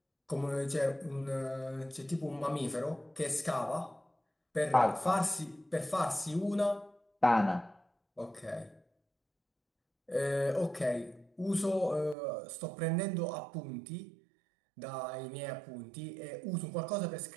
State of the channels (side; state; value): left; drops out; at 12.2 s